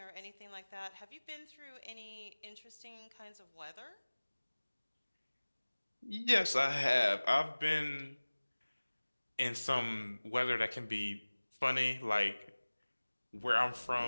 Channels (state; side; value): inverted; both; correlation -1.00